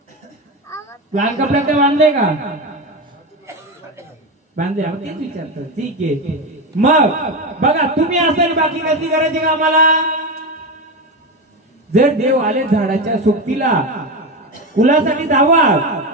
लाल कपड्यात बांधले का? बांधले. तेच विचारतो. ठीक आहे. मग बघा, तुम्ही असेल बाकी कशी करायची का आम्हाला? जर देव आले झाडाच्या सोबतीला, कुलासाठी धावा,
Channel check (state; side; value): normal; both; correlation 0.17